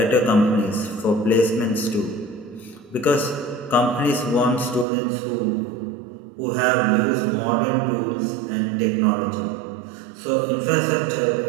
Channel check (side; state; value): left; drops out; at 4.9 s